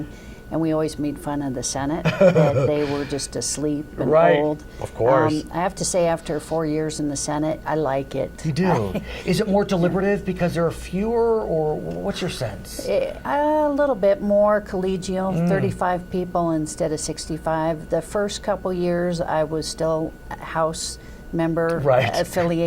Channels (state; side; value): identical; both; correlation 1.00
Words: And we always made fun of the Senate, that they were just asleep and old. Of course. I have to say, after 4 years in the Senate, I like it. You do? Is it more deliberative because there are fewer, or what's your sense? A little bit more collegial, 35 people instead of 65. The first couple years, I was still a House member